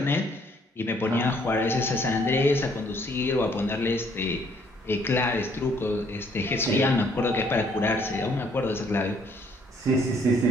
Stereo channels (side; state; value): both; normal; correlation 0.65